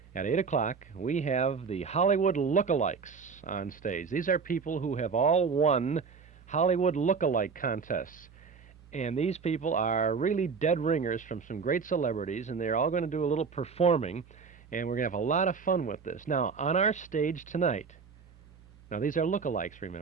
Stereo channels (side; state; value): left; quieter; 5.4 dB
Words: at 8 o'clock, we have the Hollywood Lookalikes on stage. These are people who have all won Hollywood Lookalike contests. And these people are really dead ringers from some great celebrities, and they're all going to do a little performing, and we're going to have a lot of fun with this. Now, on our stage tonight, now these are lookalikes,